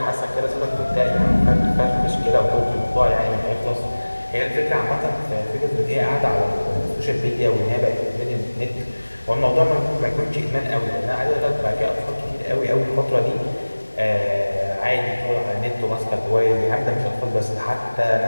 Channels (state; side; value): inverted; both; correlation -1.00